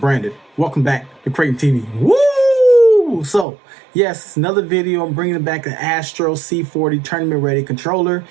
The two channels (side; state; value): left; drops out; at 3.5 s